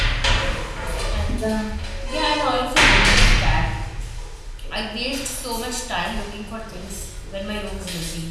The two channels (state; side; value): identical; both; correlation 1.00